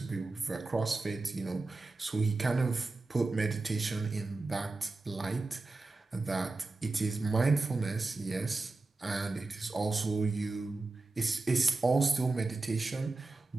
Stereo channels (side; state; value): left; quieter; 3.4 dB